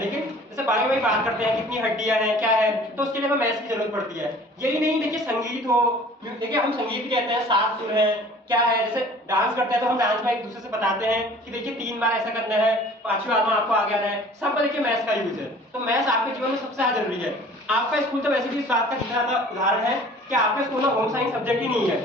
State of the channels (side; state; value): both; normal; correlation 0.48